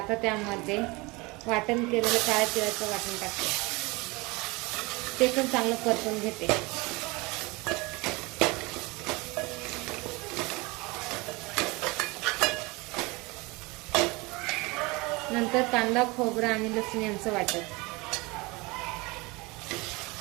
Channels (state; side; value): quieter; left; 24.9 dB